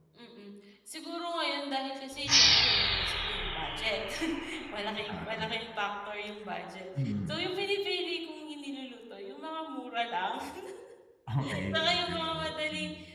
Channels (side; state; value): both; identical; correlation 1.00